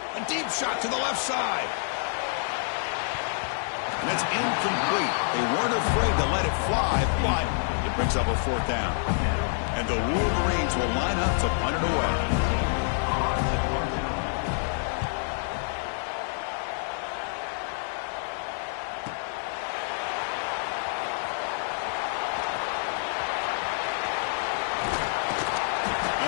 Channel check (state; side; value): silent; right; digital silence